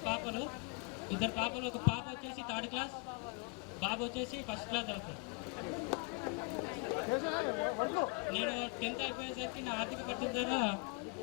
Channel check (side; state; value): right; quieter; 32.0 dB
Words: పాపలు. ఒక పాప వచ్చేసి 3rd క్లాస్, బాబు వచ్చేసి 1st క్లాస్ అవుతాడు. నేను 10th అయిపోయేసరికి నా ఆర్థిక పరిస్థితి ద్వారా